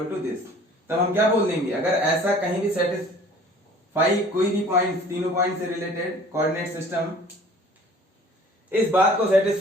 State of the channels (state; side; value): normal; both; correlation 0.49